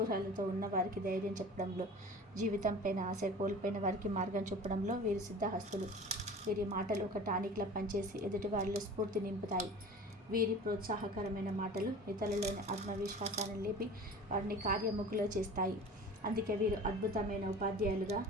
ఉన్న వారికి ధైర్యం చెప్పడంలో, జీవితంపైన ఆశ కోల్పోయిన వారికి మార్గం చూపడంలో వీరు సిద్ధహస్తులు. వీరి మాటలు ఒక టానిక్లా పనిచేసి ఎదుటి వారిలో స్ఫూర్తి నింపుతాయి. వీరి ప్రోత్సాహకరమైన మాటలు ఇతరులలోని ఆత్మవిశ్వాసాన్ని లేపి వారిని కార్యముఖులో చేస్తాయి. అందుకే వీరు అద్భుతమైన ఉపాధ్యాయులుగా,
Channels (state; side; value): normal; both; correlation 0.39